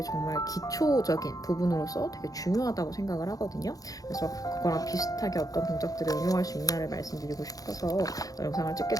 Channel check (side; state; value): right; late; 0.17 ms